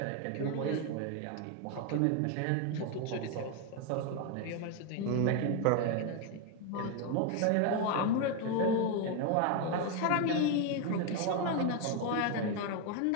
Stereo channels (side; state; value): both; different; correlation 0.01